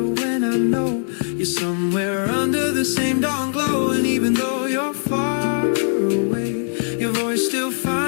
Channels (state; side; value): silent; right; digital silence